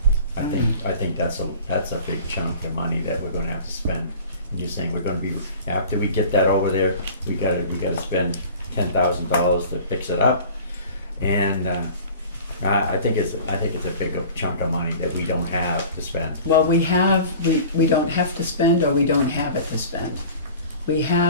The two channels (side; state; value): both; inverted; correlation -0.42